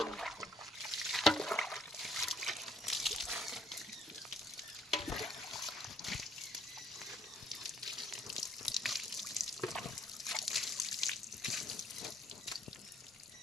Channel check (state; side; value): normal; both; correlation 0.67